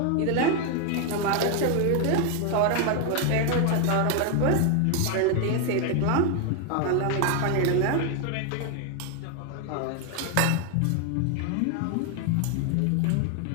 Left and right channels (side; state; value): both; different; correlation 0.01